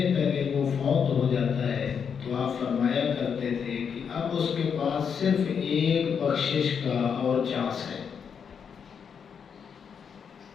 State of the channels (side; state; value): right; quieter; 6.9 dB